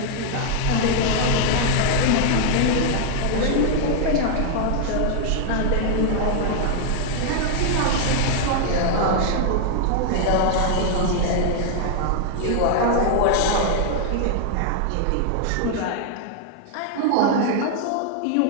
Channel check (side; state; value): both; different; correlation 0.00